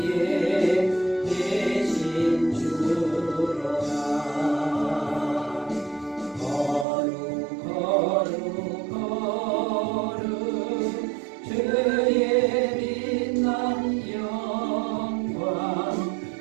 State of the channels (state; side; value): drops out; left; at 6.9 s